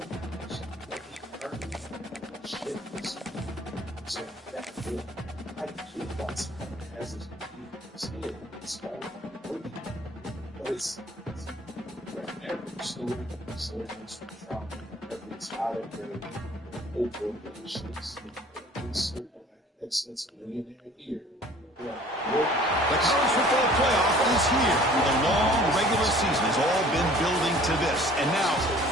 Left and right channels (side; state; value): both; normal; correlation 0.51